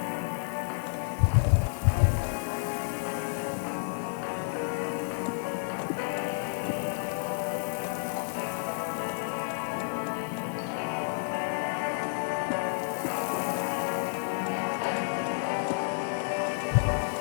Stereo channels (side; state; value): right; silent; 58 dB below the other